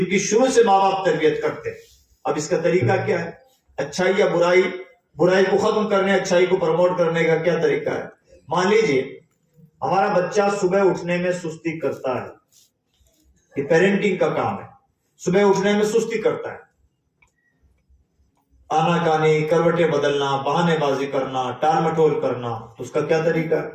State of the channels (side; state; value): both; identical; correlation 1.00